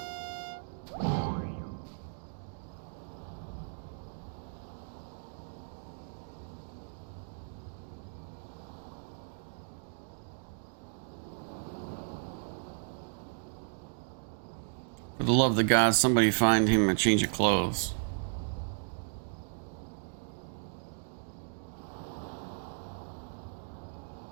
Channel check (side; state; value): left; silent; digital silence